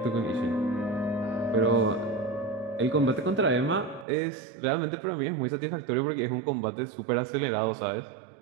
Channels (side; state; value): left; drops out; at 4.0 s